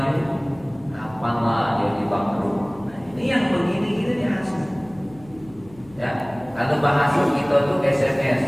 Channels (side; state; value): left; noise; hum, 23 dB below the sound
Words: kapanlah dia dibangkrut. Nah, ini yang begini ini hasud. Ya, kalau bahasa kita tuh SMS,